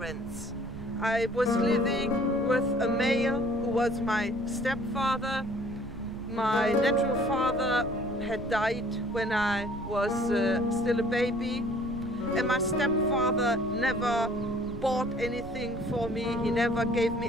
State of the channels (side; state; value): right; noise; rumble, 12 dB below the sound